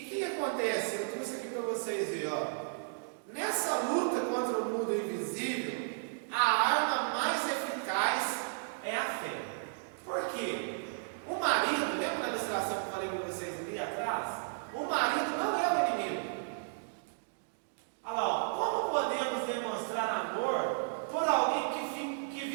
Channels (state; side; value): silent; left; digital silence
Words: o que acontece? Eu trouxe aqui para vocês verem, ó. Nessa luta com